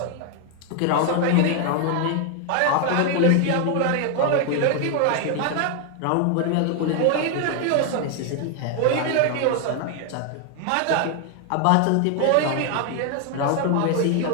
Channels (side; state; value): both; different; correlation 0.01